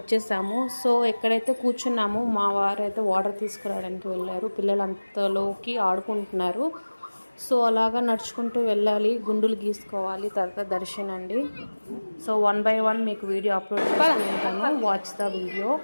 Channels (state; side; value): inverted; both; correlation -1.00